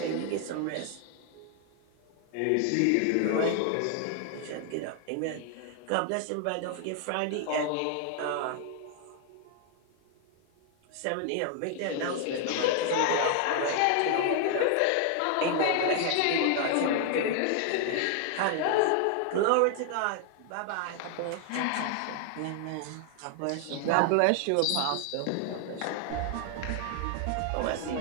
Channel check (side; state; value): both; different; correlation 0.00